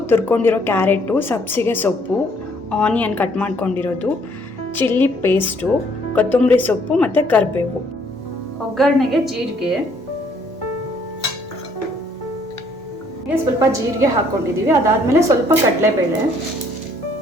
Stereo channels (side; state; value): both; normal; correlation 0.64